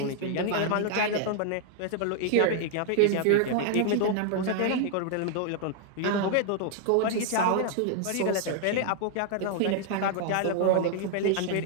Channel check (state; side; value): different; both; correlation 0.00